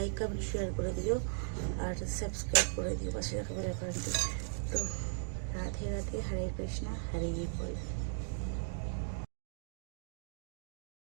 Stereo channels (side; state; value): left; silent; digital silence